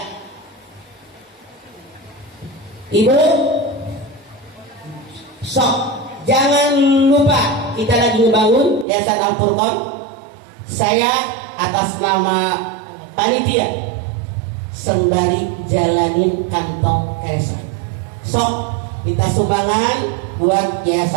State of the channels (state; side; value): drops out; left; at 8.8 s